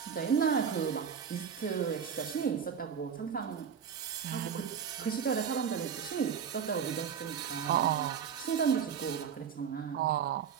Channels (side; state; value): left; quieter; 7.4 dB